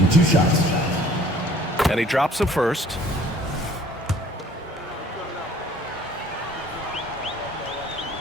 2 shots. And he drops the first.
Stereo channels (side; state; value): both; normal; correlation 0.54